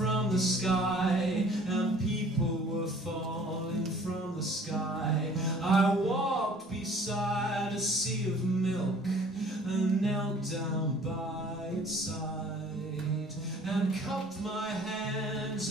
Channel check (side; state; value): both; normal; correlation 0.52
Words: the sky, and people were falling from the sky. I walked beside a sea of milk and knelt down by its side, and cupped my hands